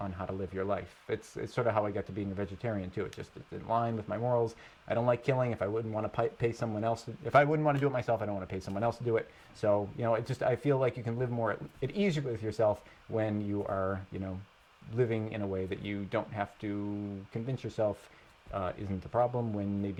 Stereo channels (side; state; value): both; identical; correlation 1.00